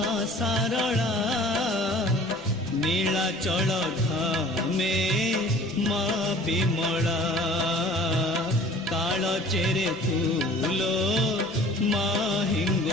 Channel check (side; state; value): both; normal; correlation 0.48